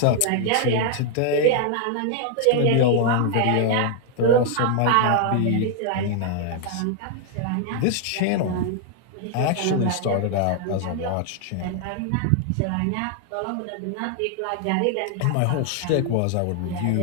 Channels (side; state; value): both; different; correlation 0.00